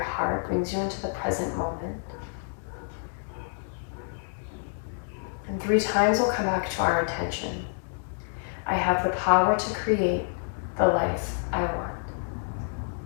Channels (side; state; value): right; silent; 59 dB below the other